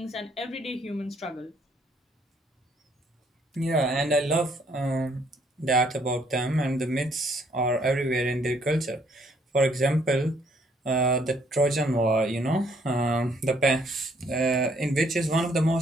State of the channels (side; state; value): both; normal; correlation 0.66